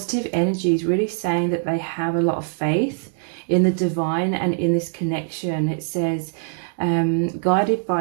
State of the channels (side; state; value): left; silent; 58 dB below the other